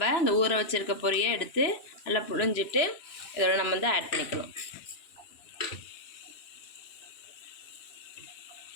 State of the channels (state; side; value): late; right; 2.9 ms